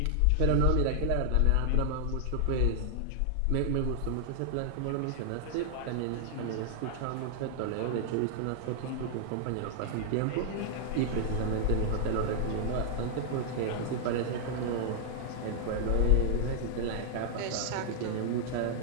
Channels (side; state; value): both; different; correlation 0.00